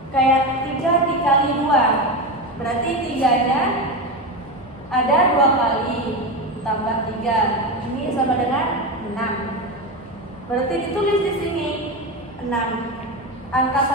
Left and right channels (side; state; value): both; normal; correlation 0.18